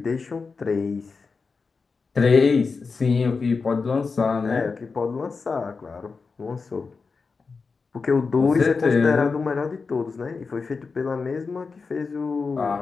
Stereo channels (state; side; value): quieter; right; 4.7 dB